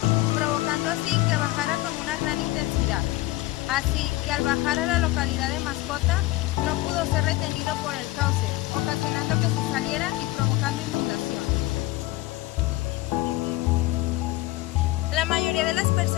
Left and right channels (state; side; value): quieter; right; 18.3 dB